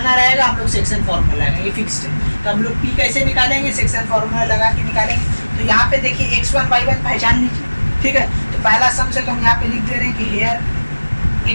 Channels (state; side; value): inverted; both; correlation -1.00